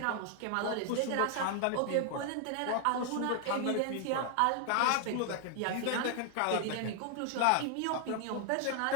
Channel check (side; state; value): both; different; correlation 0.00